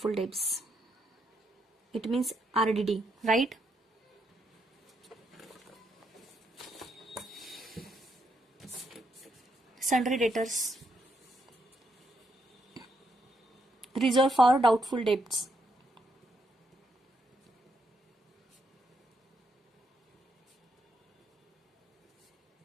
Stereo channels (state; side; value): normal; both; correlation 0.77